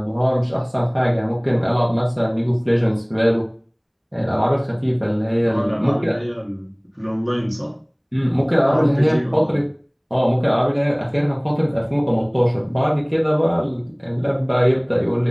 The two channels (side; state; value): both; identical; correlation 1.00